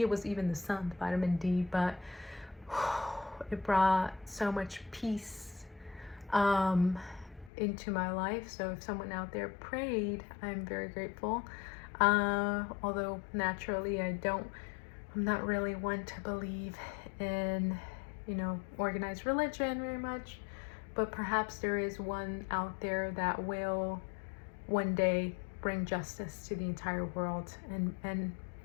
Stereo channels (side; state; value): right; drops out; at 7.5 s